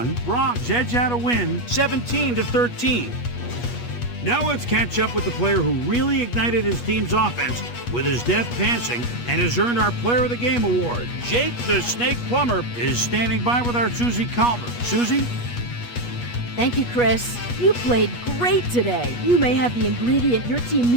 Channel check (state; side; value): late; right; 8.3 ms